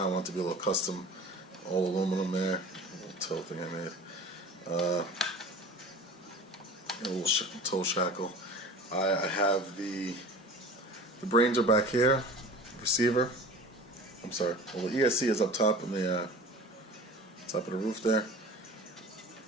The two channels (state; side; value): normal; both; correlation 0.39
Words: I want it to be a little custom, all aluminum there. A little toe thing I made. A little toe shackle. I have the brains are back here. Receiver. I'm sorry. Well, the ESC is up top in the top of the roof there.